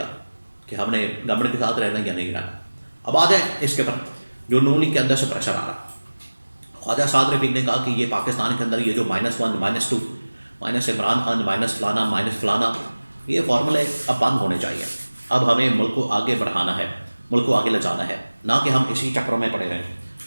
कि हमने गवर्नमेंट के साथ रहना या नहीं रहना। अब आ जाए इसके पर जो नून लीग के अंदर से प्रेशर आ रहा। ख्वाजा साद रफीक ने कहा कि ये पाकिस्तान के अंदर ये जो -1 -2 माइनस इमरान खान माइनस फलाना ये फार्मूले अब बंद होने चाहिए। अब हमें मुल्क को आगे बढ़ाना है, मुल्क को आगे ले जाना है, ना कि हम इसी चक्रों में पड़े रहें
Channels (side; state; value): both; inverted; correlation -1.00